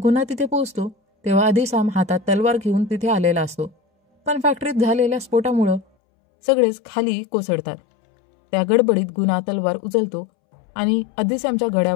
गुणा तिथे पोहोचतो तेव्हा अधिसाम हातात तलवार घेऊन तिथे आलेला असतो, पण फॅक्टरीत झालेल्या स्फोटामुळं सगळेच खाली कोसळतात. त्या गडबडीत गुणा तलवार उचलतो आणि अधिश्यामच्या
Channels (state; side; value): drops out; right; at 5.9 s